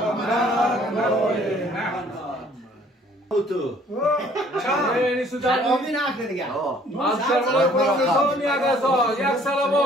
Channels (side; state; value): both; normal; correlation 0.58